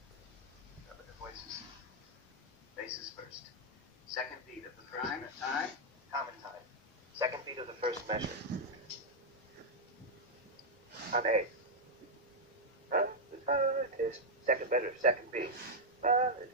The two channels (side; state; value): both; normal; correlation -0.02